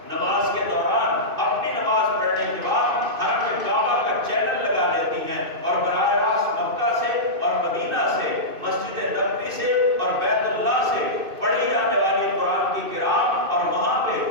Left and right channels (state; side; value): late; left; 2.6 ms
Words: نماز کے دوران اپنی نماز پڑھنے کے بعد حرم کعبہ کا چینل لگا لیتی ہیں اور براہ راست مکہ سے اور مدینہ سے، مسجد نبوی سے اور بیت اللہ سے پڑھی جانے والی قرآن کی قرات اور وہاں